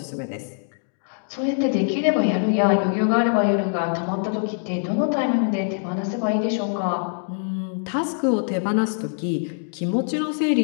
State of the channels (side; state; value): right; silent; digital silence